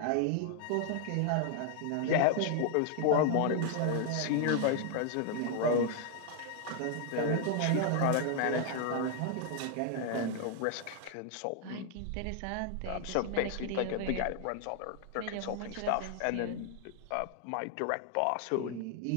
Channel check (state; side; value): different; both; correlation 0.00